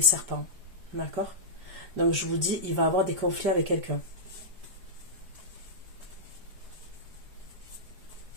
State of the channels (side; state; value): left; late; 4.8 ms